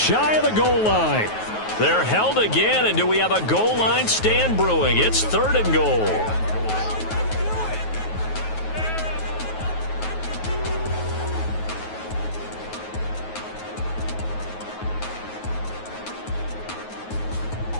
of the goal line. They're held again, and do we have a goal line stand brewing? It's 3rd and goal.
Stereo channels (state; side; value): late; right; 9.3 ms